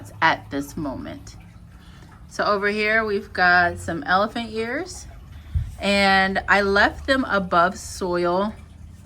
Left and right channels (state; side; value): identical; both; correlation 1.00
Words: at this moment. So over here we've got some elephant ears, and I left them above soil.